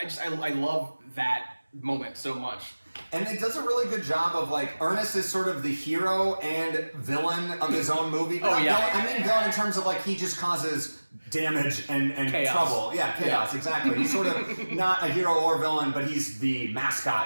I love that moment so much. And it does a really good job of like Ernest is sort of the hero and villain of his own movie. But villain, I mean villain in terms of like he just causes damage and chaos. Trouble. Yeah, chaos, exactly. He's sort of not a hero or villain, but he's the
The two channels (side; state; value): both; inverted; correlation -1.00